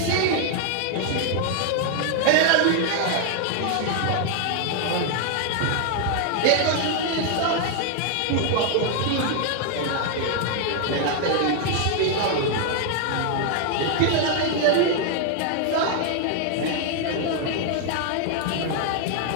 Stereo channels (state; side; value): different; both; correlation 0.00